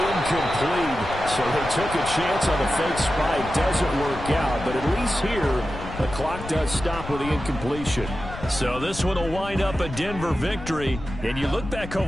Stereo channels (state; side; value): noise; left; rumble, 11 dB below the sound